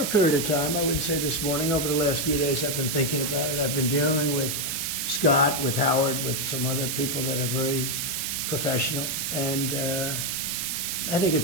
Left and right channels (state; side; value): noise; right; hiss, 1 dB below the sound